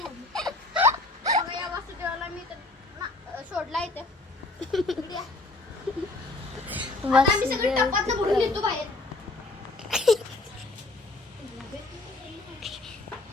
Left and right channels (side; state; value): right; quieter; 3.1 dB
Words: बघा या वासुदेवाला मी तर सोडला इथं. इकडे या. आता आम्ही सगळे टपातनं भरून येतो बाहेर.